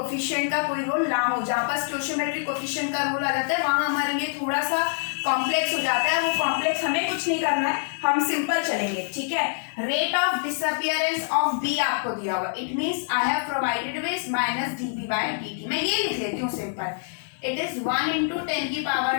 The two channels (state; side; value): silent; right; digital silence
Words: का कोई रोल ना हो। जहाँ पर स्टोइचियोमेट्रिक कोफिशिएंट का रोल आ जाता है वहां हमारे लिए थोड़ा सा कॉम्प्लेक्स हो जाता है, वो कॉम्प्लेक्स हमें कुछ नहीं करना है, हम सिंपल चलेंगे। ठीक है, rate of disappearance of B आपको दिया होगा, it means I have provided with minus dB by dt, मैं ये लिख लेती हूँ सिंपल, इट इज 1 into 10 की पावर